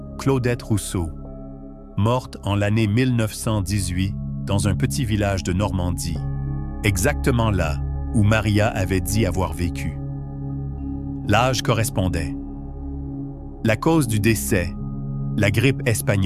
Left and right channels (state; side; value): identical; both; correlation 1.00